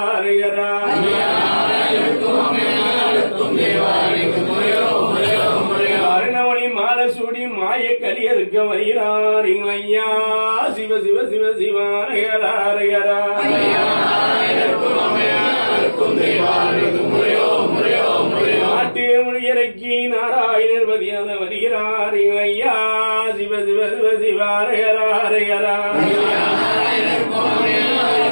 அரகரா அருணமணி மாலை சூடி மாய கலியறுக்க வருகிறார் எங்கள் ஐயா சிவ சிவ சிவ சிவா அரகரா அரகரா நாட்டு மொழியரைக்க நோக்கி நாராயணர் பதியாக வருகிறார் ஐயா சிவ சிவ சிவ சிவாரகராரகரா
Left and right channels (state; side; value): inverted; both; correlation -1.00